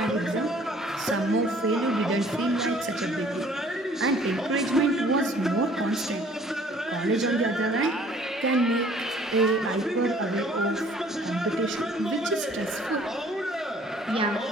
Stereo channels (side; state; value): both; normal; correlation 0.56